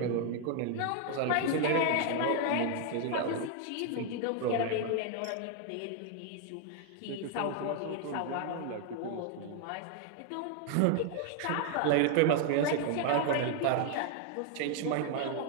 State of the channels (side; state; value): both; different; correlation 0.00